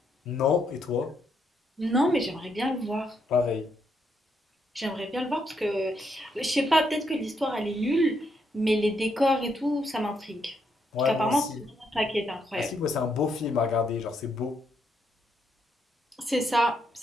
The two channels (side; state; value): both; normal; correlation 0.77